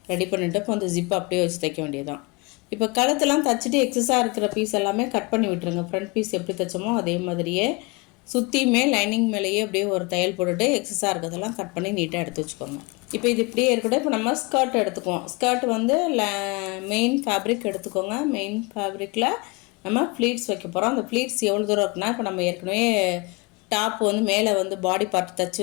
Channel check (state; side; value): quieter; right; 26.9 dB